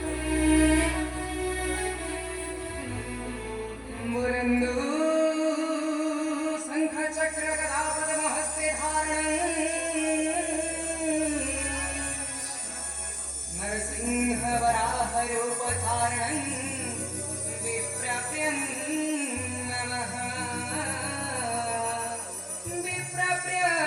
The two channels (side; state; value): both; identical; correlation 1.00